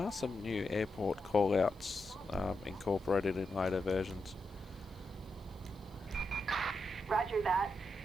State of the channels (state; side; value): noise; left; hiss, 30 dB below the sound